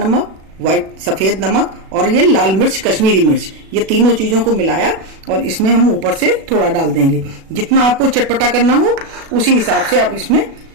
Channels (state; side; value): late; left; 37 ms